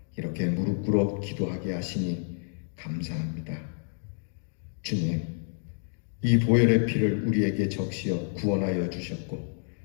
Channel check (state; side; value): silent; right; digital silence